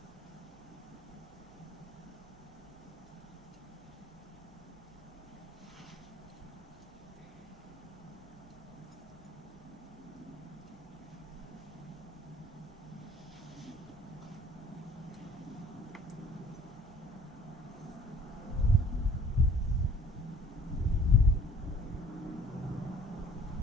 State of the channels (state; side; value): normal; both; correlation 0.53